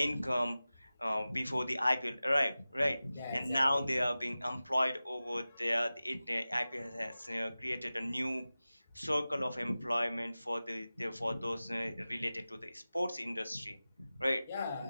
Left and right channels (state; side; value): inverted; both; correlation -0.96